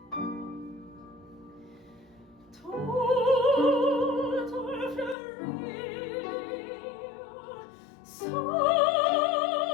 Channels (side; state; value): right; drops out; at 5.2 s